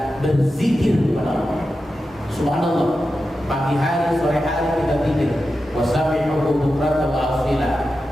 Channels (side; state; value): both; normal; correlation 0.91